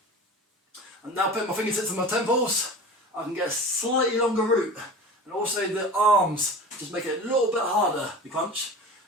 I'm now putting my fingertips on my temples. I can get a slightly longer route, and also the arms just make it a little bit harder to crunch.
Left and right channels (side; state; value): both; normal; correlation 0.35